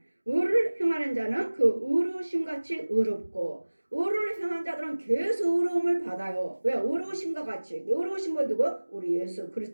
의를 행하는 자는 그 의로우심같이 의롭고 의를 행하는 자들은 계속 의로움을 받아요. 왜? 의로우심과 같이. 의로우심은 누구? 우리 예수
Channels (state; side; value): inverted; both; correlation -1.00